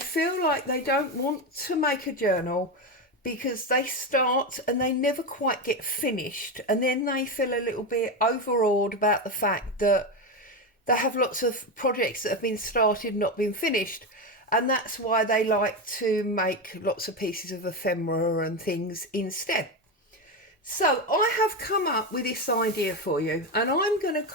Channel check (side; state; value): both; normal; correlation 0.14